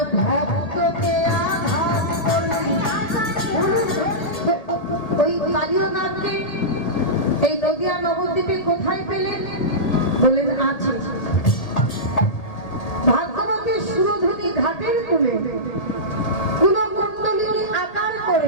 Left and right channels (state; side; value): late; right; 1.8 ms